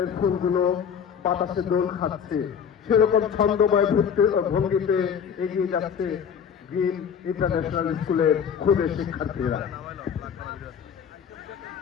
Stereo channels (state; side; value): quieter; right; 7.5 dB